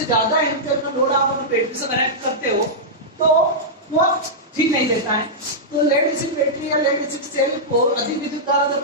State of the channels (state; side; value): normal; both; correlation -0.10